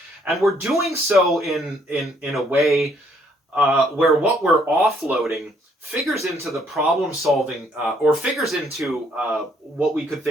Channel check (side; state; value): both; normal; correlation 0.67